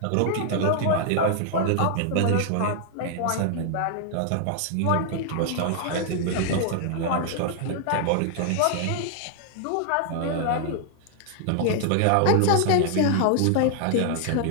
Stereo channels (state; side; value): different; both; correlation 0.00